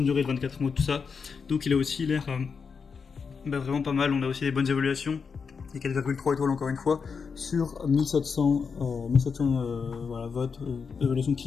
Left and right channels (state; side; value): quieter; right; 5.7 dB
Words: durée de 24 mois, tout ça. Donc il a aussi l'air vraiment pas mal. On a aussi des bonnes évaluations. Et 4,3 étoiles encore une fois sur 1700 voilà, votes évaluation